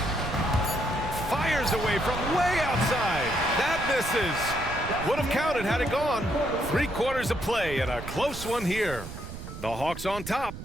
Fires away from way outside. That misses. Would have counted had it gone. 3 quarters of play and a close one here. The Hawks on top.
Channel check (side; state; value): right; noise; rumble, 10 dB below the sound